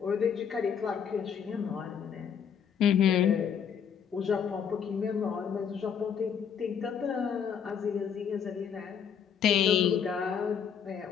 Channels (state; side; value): quieter; right; 7.6 dB